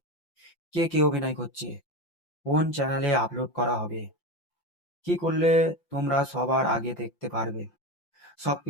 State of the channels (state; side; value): late; right; 5.8 ms